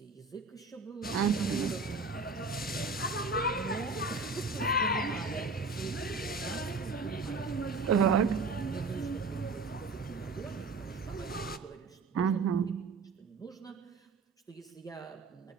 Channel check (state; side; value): quieter; left; 3.9 dB